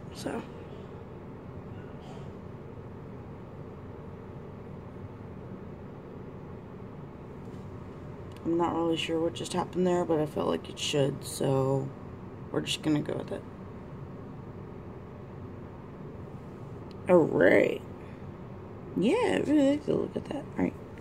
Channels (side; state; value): both; identical; correlation 1.00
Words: so. I'm not really sure what just happened there, but I felt like it should, so we're just gonna go with it. Alright. Yeah, I really like to look at that. Alright.